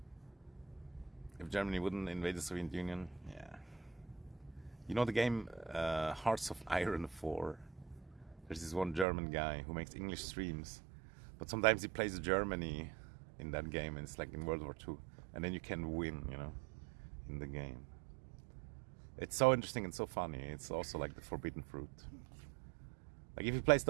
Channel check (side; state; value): left; drops out; at 9.1 s